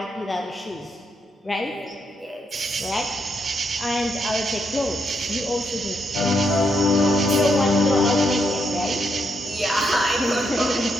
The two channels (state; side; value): normal; both; correlation 0.78